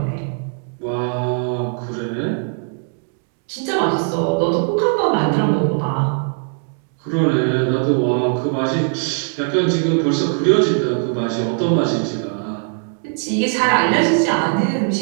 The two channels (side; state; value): left; silent; 56 dB below the other